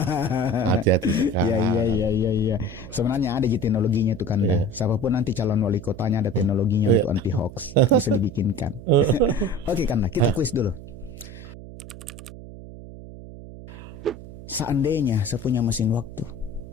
Hati-hati sekarang. Iya. Sebenarnya ada teknologinya tuh kan. Siapapun nanti calon wali kotanya ada teknologinya untuk anti hoax. Bisa dibikinkan. Oke Kanda, kita kuis dulu. Seandainya saya punya mesin waktu,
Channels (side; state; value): right; noise; hum, 14 dB below the sound